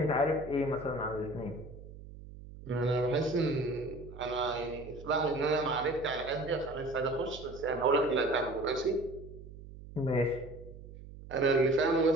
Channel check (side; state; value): right; noise; hum, 15 dB below the sound